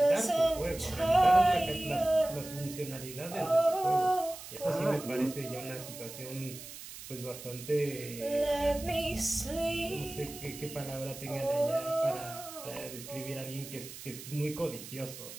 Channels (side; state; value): right; noise; hiss, 13 dB below the sound